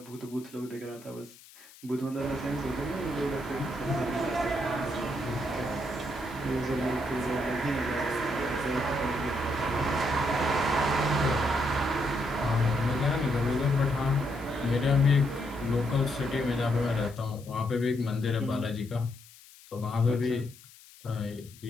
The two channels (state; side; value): noise; left; hiss, 22 dB below the sound